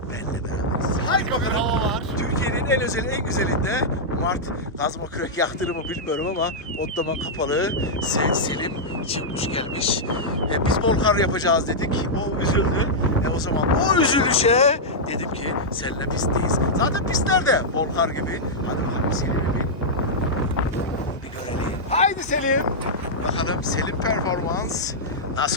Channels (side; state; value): both; normal; correlation -0.08